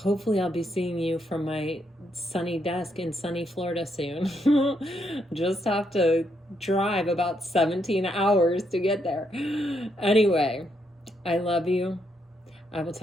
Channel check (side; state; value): both; normal; correlation 0.77